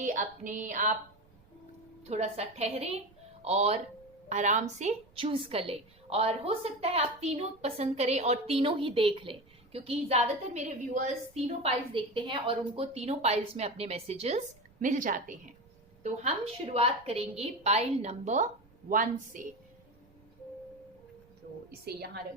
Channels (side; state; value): right; noise; rumble, 29 dB below the sound